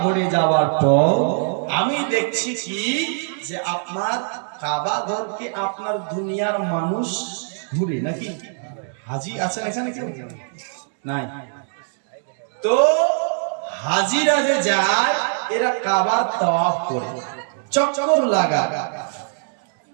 ঘরে যাওয়ার পর আমি দেখছি কি যে আপনার কাবা ঘরকে আপনার দুনিয়ার মানুষ ঘুরে নাকি? হাজি আছেন এখানে কেউ? নাই। তো হাজিরা যে যায় এরা কাবার তাওয়াফ করে, চক্কর লাগা।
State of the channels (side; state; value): left; silent; digital silence